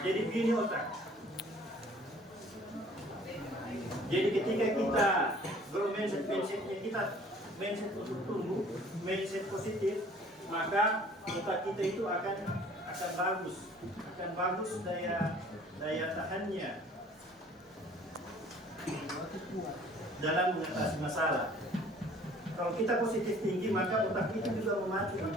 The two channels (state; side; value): normal; both; correlation 0.53